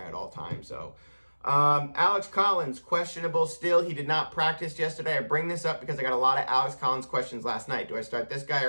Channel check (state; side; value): inverted; both; correlation -1.00